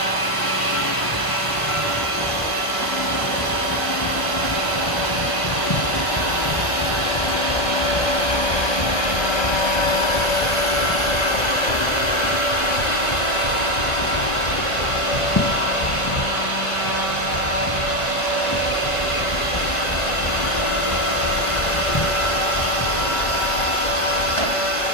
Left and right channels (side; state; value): right; late; 1.3 ms